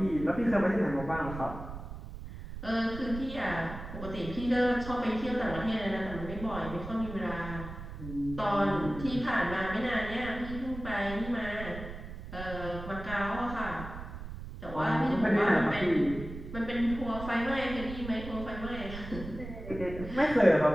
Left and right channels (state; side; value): noise; right; rumble, 10 dB below the sound